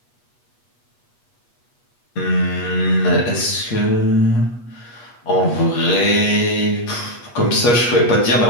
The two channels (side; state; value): right; late; 8.3 ms